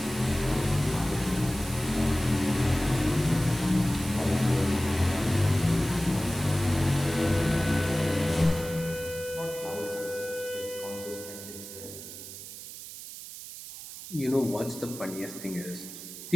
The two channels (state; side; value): noise; right; hiss, 12 dB below the sound